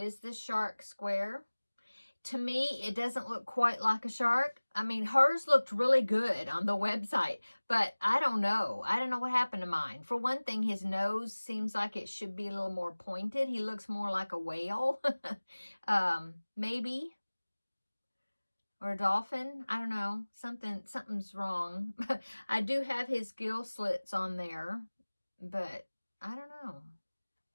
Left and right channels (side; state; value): both; inverted; correlation -1.00